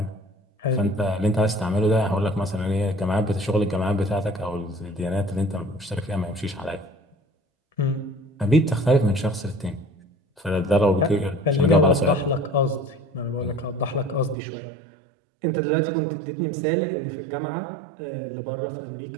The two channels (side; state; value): left; drops out; at 14.4 s